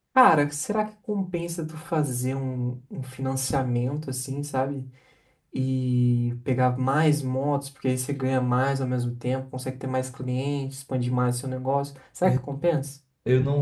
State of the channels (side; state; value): both; identical; correlation 1.00